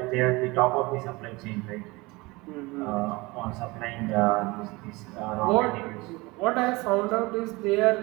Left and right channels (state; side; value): quieter; left; 23.5 dB